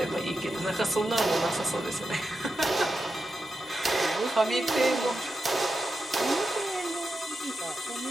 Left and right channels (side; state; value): both; normal; correlation 0.89